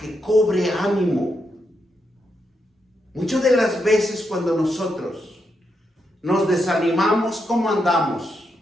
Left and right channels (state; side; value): normal; both; correlation 0.82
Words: cobre ánimo. Muchas de las veces cuando nosotros nos desanimamos, ¿cómo andamos?